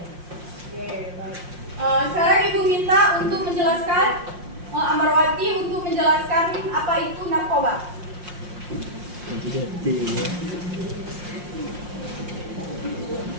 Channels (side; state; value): left; late; 5.6 ms